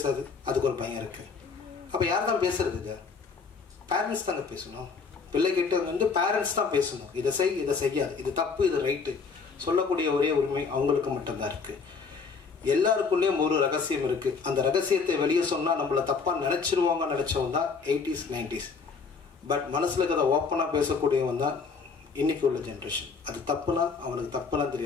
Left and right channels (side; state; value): right; quieter; 5.1 dB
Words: அதுக்கு ஒரு பையன் இருக்குது. அப்போ யார் தான் பேசுறது? இது பேரண்ட்ஸ் தாங்க பேசணும். பிள்ளைகிட்ட வந்து பேரண்ட்ஸ் தான் பேசணும். இதை செய், இதை செய்யாது, இது தப்பு, இது ரைட்டு சொல்லக்கூடிய ஒரே உரிமை அவங்களுக்கு மட்டும்தான் இருக்குது. எல்லாருக்குள்ளேயும் ஒரு ரகசியம் இருக்குது. அந்த ரகசியத்தை வெளியே சொன்னால் நம்மளை தப்பாக நினச்சிருவாங்க நினச்சவன் தான் 80s 90s. பட் மனசில் இருக்கிறத ஓப்பனாக பேசக்கூடியவன் தான் இன்னைக்கு உள்ள ஜென்ரேஷன். அது தப்புனா அவனுக்கு தப்புலாம்